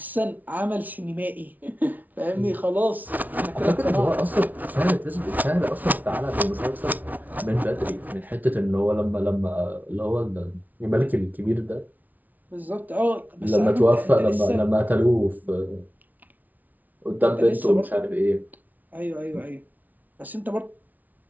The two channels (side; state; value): left; late; 0.077 ms